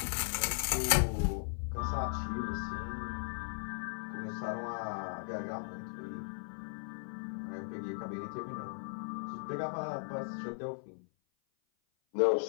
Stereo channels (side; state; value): right; silent; 53 dB below the other